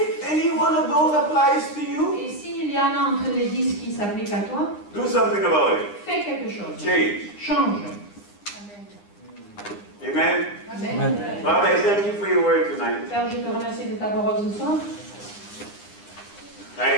any one of those applies to you, Et s'il y en a entre les 10 qui s'appliquent à toi, do something about it. fais quelque chose. Change. Change. Amen. Amen. Father, I thank you for your word tonight. Père, je te remercie de ta parole ce soir.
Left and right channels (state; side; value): late; right; 9.8 ms